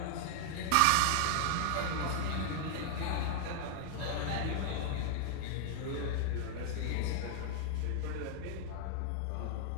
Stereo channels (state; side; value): different; both; correlation 0.00